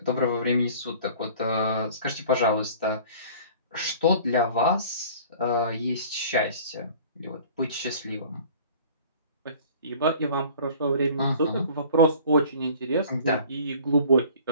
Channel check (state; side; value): inverted; both; correlation -0.46